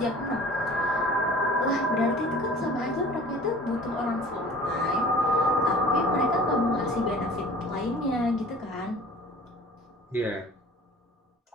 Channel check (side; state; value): both; normal; correlation 0.45